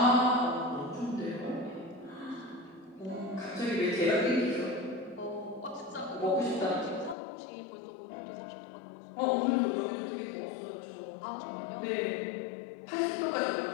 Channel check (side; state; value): right; drops out; at 7.2 s